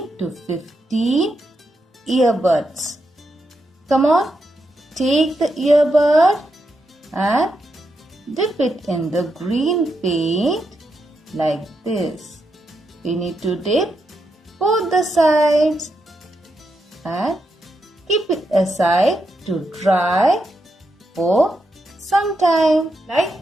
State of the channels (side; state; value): both; normal; correlation 0.83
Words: to 15 earbuds. Come on, take the earbud and dip it in the green paint like this. We need to dip both the sides and keep it aside to dry for some time.